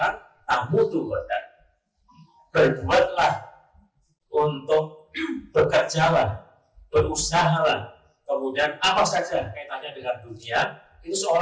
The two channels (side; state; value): both; identical; correlation 1.00